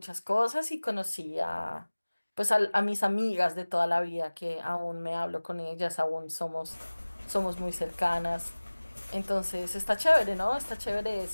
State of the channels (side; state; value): both; inverted; correlation -1.00